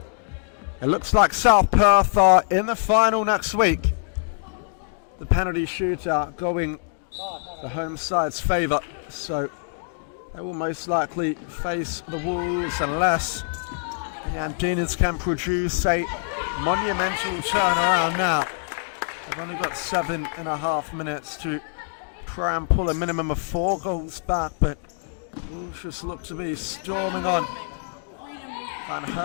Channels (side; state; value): right; silent; digital silence